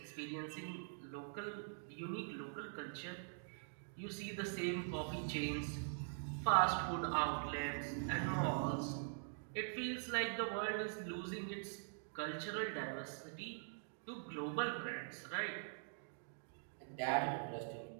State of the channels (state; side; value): silent; left; digital silence